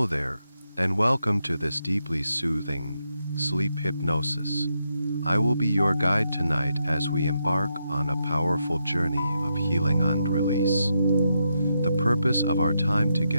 there, and welcome to this deeply soothing sleep hypnosis. I will be your guide tonight as we embark on a powerful journey of healing and release. The purpose of our time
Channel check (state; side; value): inverted; both; correlation -0.83